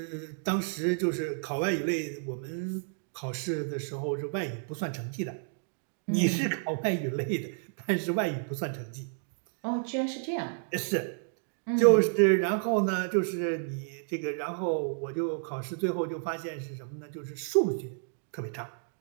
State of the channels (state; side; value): silent; left; digital silence